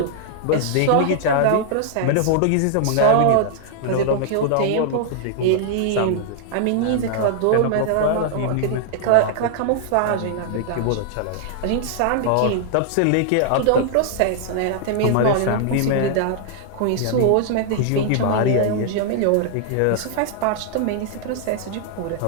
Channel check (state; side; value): different; both; correlation -0.01